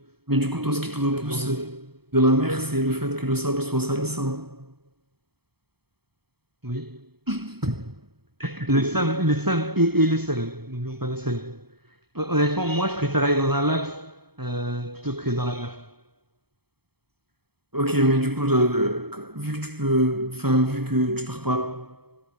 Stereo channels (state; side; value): late; left; 0.97 ms